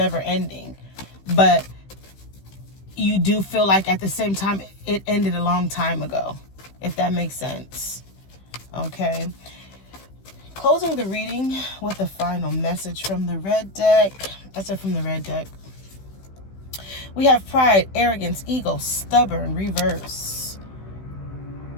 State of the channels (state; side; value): late; right; 15 ms